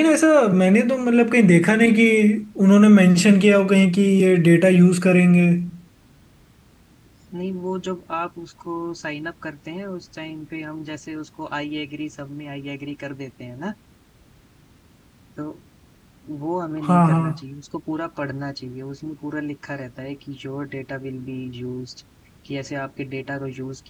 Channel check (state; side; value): identical; both; correlation 1.00